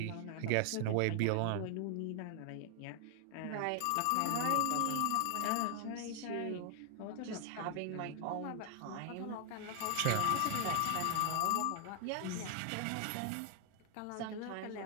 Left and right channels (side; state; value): both; different; correlation 0.00